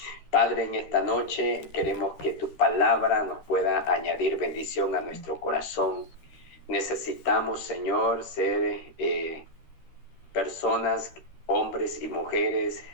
Padre, en esta noche queremos que tu palabra nos pueda añadir bendición a nuestro corazón. Necesitamos, Señor, ser personas, hombres y mujeres,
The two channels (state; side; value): late; right; 13 ms